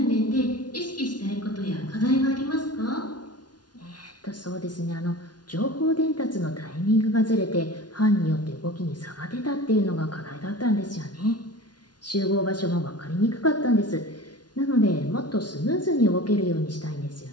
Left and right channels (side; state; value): right; late; 0.69 ms